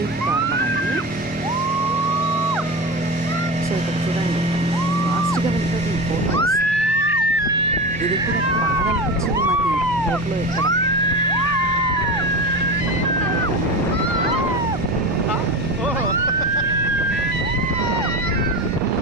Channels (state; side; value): normal; both; correlation 0.26